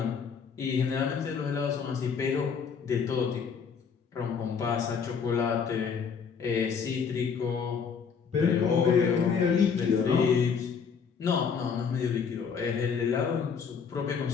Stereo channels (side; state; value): right; quieter; 6.3 dB